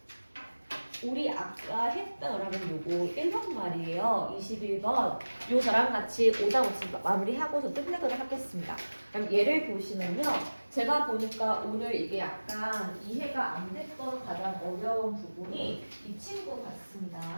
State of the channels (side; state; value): both; inverted; correlation -1.00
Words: 우리 아까 했던 여러분 요거 1번 말이에요. 21번. 요 저랑 같이 오답 없이 마무리하고서 끝내도록 하겠습니다. 그럼 얘를 보시면요. 제가 보니까 오늘 이게 약간 이해가 안 됐던 가장 어려운 부분이 이 친구 같습니다.